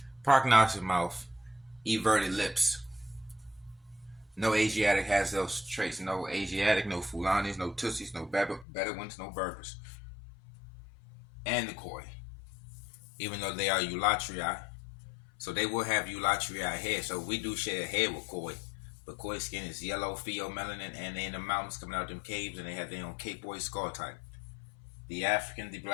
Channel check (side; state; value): right; drops out; at 8.7 s